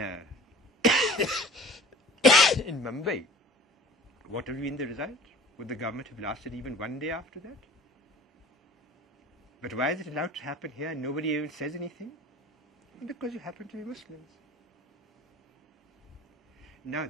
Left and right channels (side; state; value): both; normal; correlation 0.45